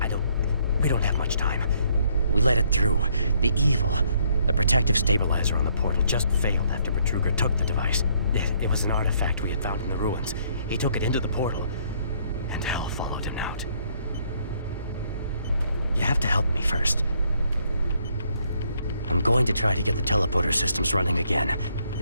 we don't have much time. We let it through. The evil, the protective stabilizer on the portal just failed after Betruger took the device. It was an artifact we had found in the ruins. He took it into the portal, and hell followed him out. You have to help me first. I'm going to try to get the teleporter systems running again.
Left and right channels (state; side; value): inverted; both; correlation -0.68